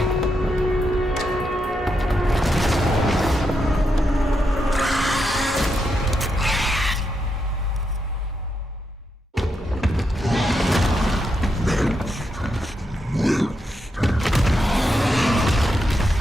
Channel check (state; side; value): normal; both; correlation 0.83